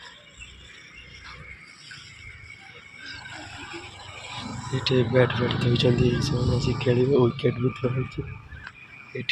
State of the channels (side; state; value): both; identical; correlation 1.00